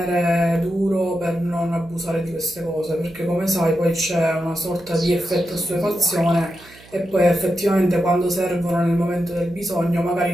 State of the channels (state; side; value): noise; right; hum, 24 dB below the sound